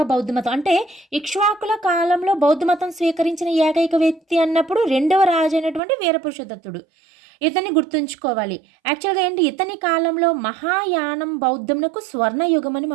బౌద్ధ మతం, అంటే ఇక్ష్వాకుల కాలంలో బౌద్ధ మతం స్వీకరించిన ఏకైక వ్యక్తి అన్నప్పుడు 2వ రాజు అయినటువంటి వీరపురుషదత్తుడు. ఇతన్ని గుర్తుంచుకోవాలి. యాక్చువల్గా ఏంటి, ఇతని కాలంలో మహాయానం బౌద్ధమునకు స్వర్ణయుగం అని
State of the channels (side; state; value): left; drops out; at 5.8 s